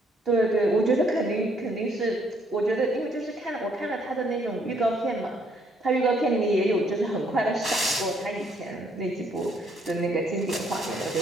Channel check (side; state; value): both; normal; correlation 0.68